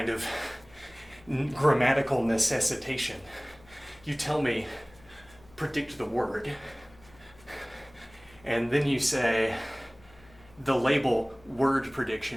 of grammatical necessitation. You tell me, predict the word, and then you say, the label word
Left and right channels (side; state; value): left; noise; hum, 26 dB below the sound